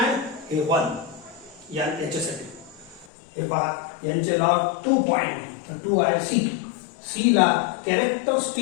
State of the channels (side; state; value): right; drops out; at 3.1 s